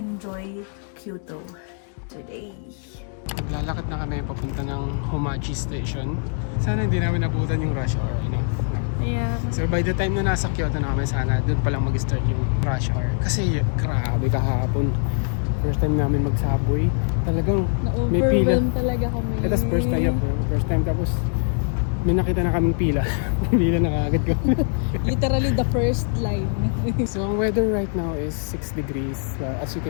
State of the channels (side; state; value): right; silent; 56 dB below the other